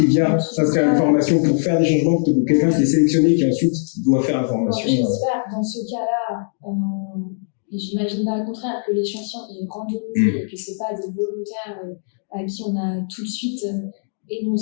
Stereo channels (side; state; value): right; silent; digital silence